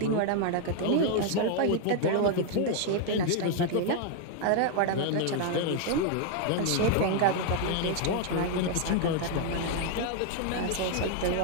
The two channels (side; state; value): both; different; correlation 0.00